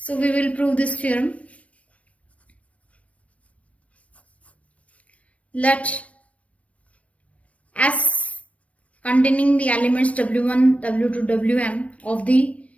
we will prove this theorem. Let S containing the elements W1, W2, Wm of the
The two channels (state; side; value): late; right; 0.065 ms